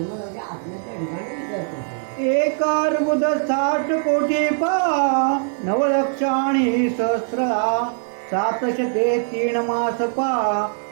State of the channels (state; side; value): silent; left; digital silence